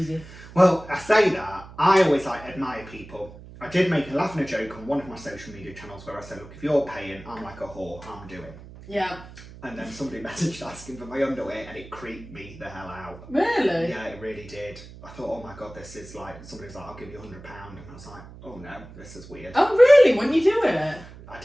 Well, I say that. I always admire people. I did make a laugh and a joke on one of my social media channels where I said, look, if you're paying, I'm like a whore, I'm doing. Yeah. And then somebody messaged asking for my underwear and it creeped me the hell out. Really? Yeah, it really did. I thought, oh my God, this is like, somebody's like, I'll give you £100. And I was like, oh no, this is weird. Oh, really? When you do it? I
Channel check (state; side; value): noise; right; hum, 17 dB below the sound